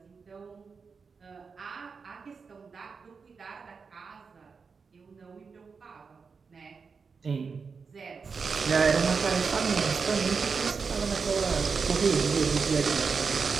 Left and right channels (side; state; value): left; quieter; 5.2 dB